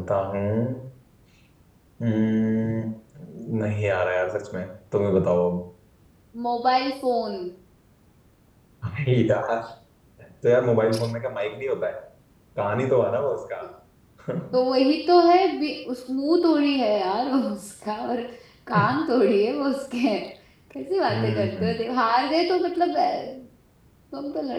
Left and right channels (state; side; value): identical; both; correlation 1.00